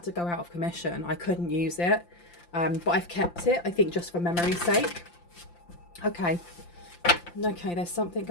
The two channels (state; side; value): late; right; 5.8 ms